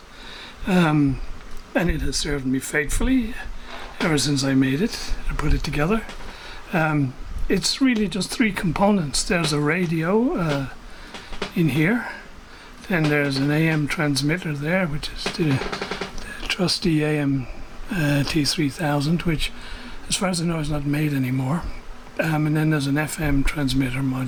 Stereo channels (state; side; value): identical; both; correlation 1.00